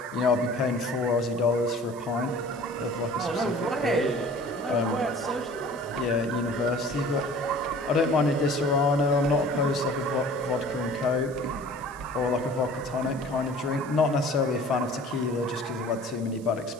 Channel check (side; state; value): right; noise; hiss, 22 dB below the sound